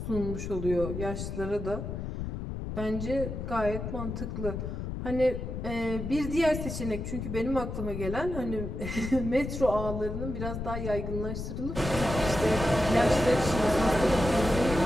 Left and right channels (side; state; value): left; noise; rumble, 5 dB below the sound